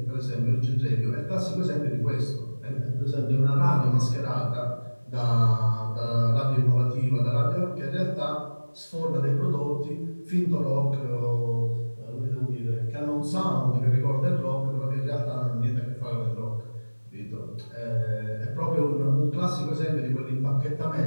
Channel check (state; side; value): inverted; both; correlation -1.00